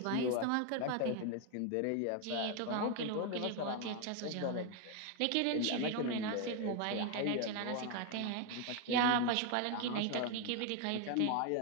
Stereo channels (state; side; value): different; both; correlation 0.01